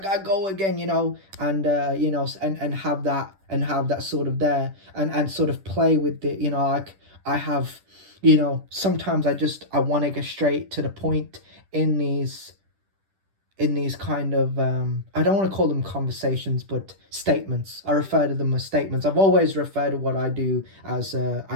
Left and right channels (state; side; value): late; left; 10 ms